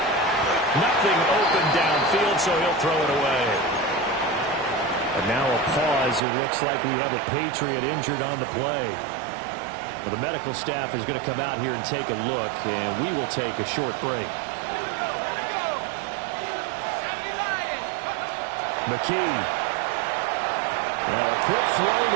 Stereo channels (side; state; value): left; drops out; at 6.2 s